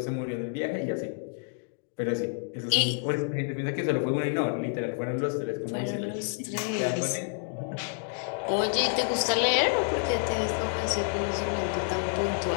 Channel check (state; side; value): silent; right; 59 dB below the other